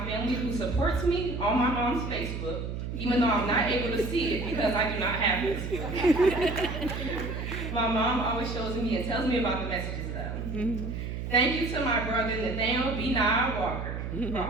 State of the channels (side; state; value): right; noise; hum, 5 dB below the sound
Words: family who supports me on my mom's Facebook, even though I'm not able to see it because I do not have Facebook. My mom always shows me and tells me about the messages though. Thank you to my brother Nathaniel B. Nye Walker for